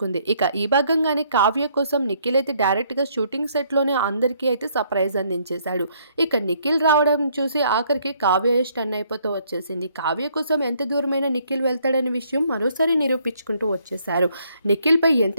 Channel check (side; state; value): both; inverted; correlation -0.67